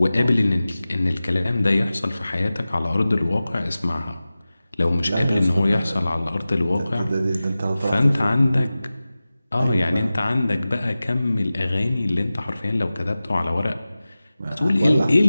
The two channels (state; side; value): inverted; both; correlation -0.96